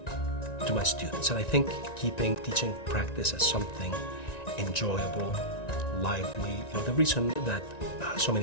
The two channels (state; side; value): late; right; 1.9 ms